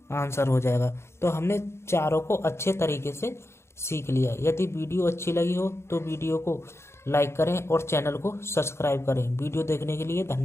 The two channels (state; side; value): late; right; 0.13 ms